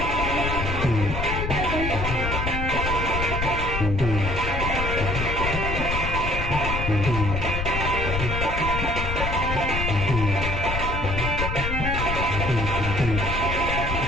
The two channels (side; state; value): left; noise; rumble, 2 dB below the sound